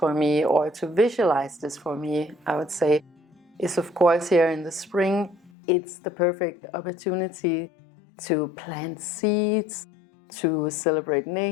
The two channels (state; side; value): drops out; right; at 5.5 s